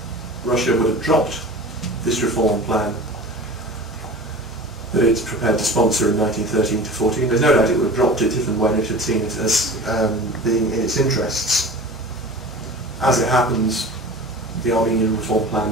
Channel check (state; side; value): normal; both; correlation 0.37